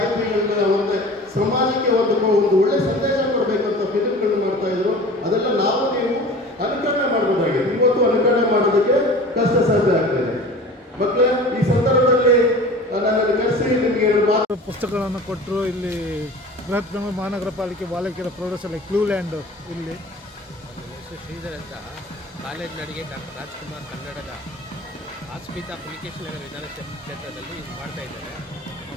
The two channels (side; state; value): both; normal; correlation 0.40